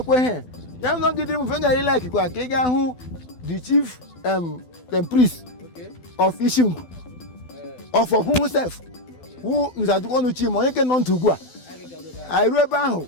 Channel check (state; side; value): late; right; 12 ms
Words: he. Ya no gidiri mu fenga ile like kwa ka ị ga hụ the chief priest of Isingwu. Of himself. Who nzajukwo nu chi mo onye ke nọ ntugwu a. Airu ebe ahụ